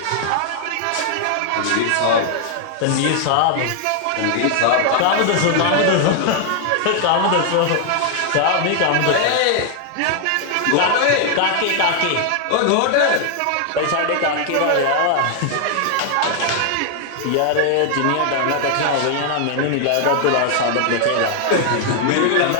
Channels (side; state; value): both; different; correlation 0.00